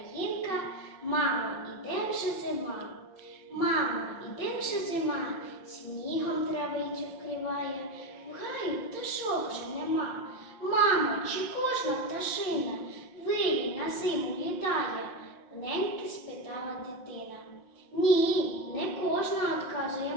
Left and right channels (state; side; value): late; right; 5.6 ms